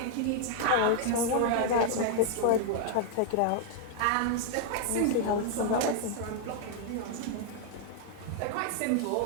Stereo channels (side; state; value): both; different; correlation 0.00